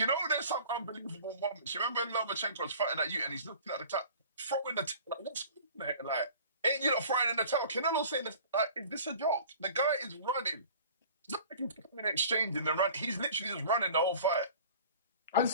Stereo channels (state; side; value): inverted; both; correlation -0.45